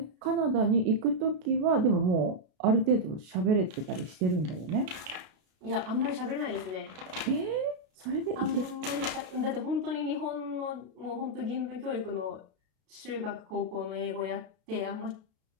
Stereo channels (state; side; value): late; left; 33 ms